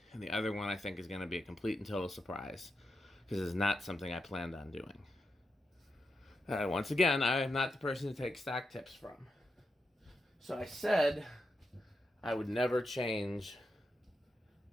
and the other one I think is going to be a complete and total surprise because it's not something I planned on doing. Once again, I am not the person to take stock tips from. So I said I would never change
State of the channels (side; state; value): both; normal; correlation 0.86